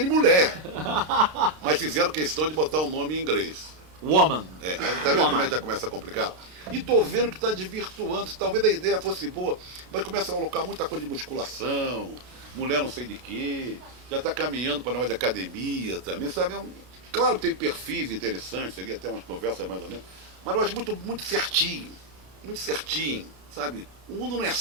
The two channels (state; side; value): late; left; 32 ms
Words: mulher. Mas fizeram questão de botar o nome em inglês. Woman. É, aí tá vendo como é que já começa a complicar? E tô vendo que está desvirtuando, talvez a ideia fosse boa, mas começa a colocar muita coisa de musculação, mulher não sei de quê, já está caminhando para a negócio de academia também, sabe? Claro que tem perfis interessantes, seria até umas conversas mais ou menos, mas eu acho muito certinho, sabe? O mundo não é